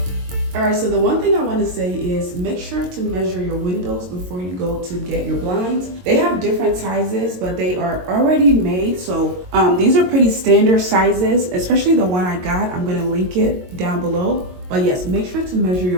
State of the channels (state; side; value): late; left; 22 ms